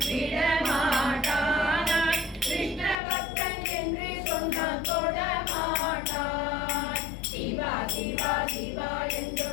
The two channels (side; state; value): right; drops out; at 3.0 s